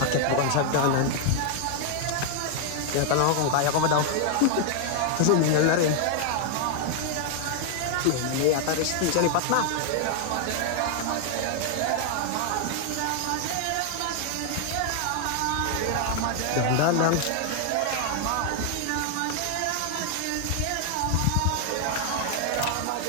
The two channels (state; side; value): different; both; correlation 0.00